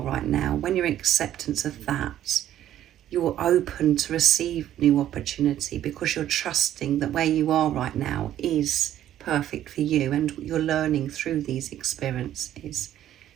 right now, when you're in acceptance of that, you're open to receive new opportunity, because you're trusting that where you are right now is perfect for you, and you're learning through these experiences.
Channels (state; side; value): quieter; left; 11.9 dB